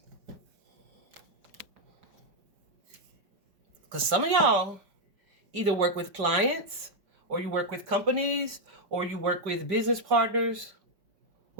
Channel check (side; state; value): left; late; 5.2 ms